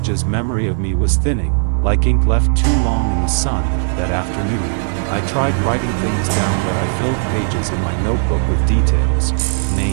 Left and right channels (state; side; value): silent; left; digital silence